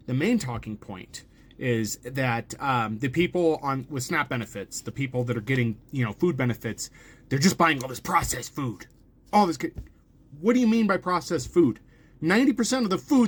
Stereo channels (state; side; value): identical; both; correlation 1.00